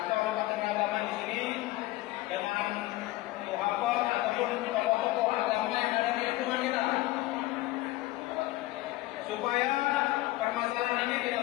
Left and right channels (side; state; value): right; quieter; 18.4 dB